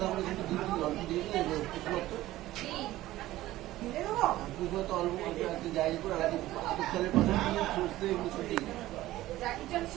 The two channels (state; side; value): quieter; left; 15.9 dB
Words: করে কিন্তু দিয়ে দিই, অল্প দিয়ে দিই, কি? তো অল্প অল্প একটু জায়গা করে আলাদা চালের পাশে সুস্থ এগুলো ছুটি জাকি চল